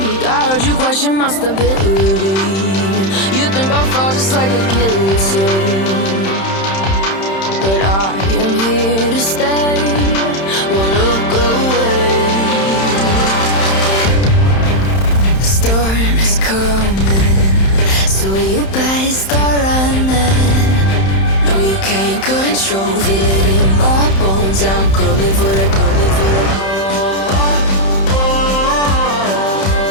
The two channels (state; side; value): late; right; 31 ms